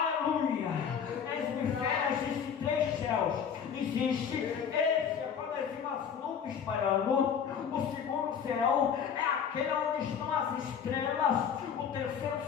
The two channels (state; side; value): quieter; right; 7.5 dB